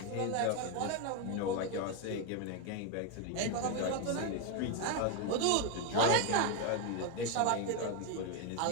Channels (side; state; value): both; different; correlation 0.01